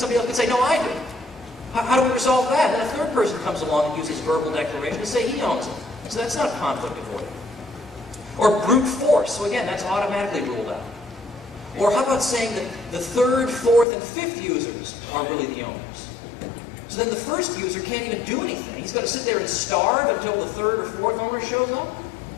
else could say, no, I do. How do we resolve that? And a third person comes along and uses verbal declaration to say he owns it. So that's not conflict avoiding. Or brute force. So again, that's automatically ruled out. Or how about saying that the third, fourth, and fifth users are really the owners? So then the first user can't even do anything. He's got to sit there and starve until the third or fourth owner shows up?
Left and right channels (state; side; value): drops out; right; at 13.9 s